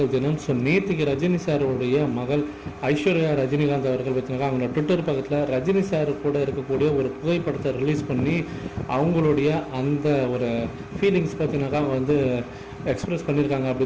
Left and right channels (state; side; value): identical; both; correlation 1.00